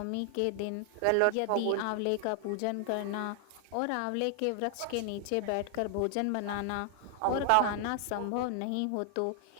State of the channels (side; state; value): both; different; correlation 0.00